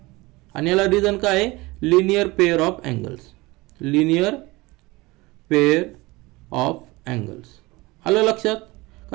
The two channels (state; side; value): quieter; left; 22.1 dB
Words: आणि याला रिझन काय आहे, लिनियर पेअर ऑफ अँगल्स. आलं लक्षात,